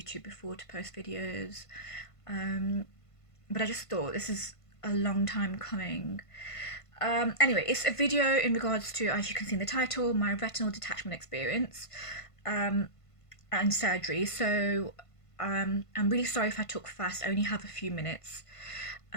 before to post videos, but I just thought this is a long time coming. Anyway, it's a video in regards to, as you can see in the title, my retinal detachment experience and surgery. So I'm really sorry if I talk fast. I only have a few minutes.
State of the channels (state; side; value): late; right; 1.5 ms